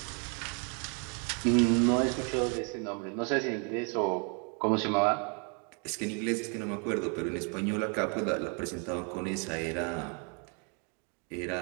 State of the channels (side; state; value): left; quieter; 37.6 dB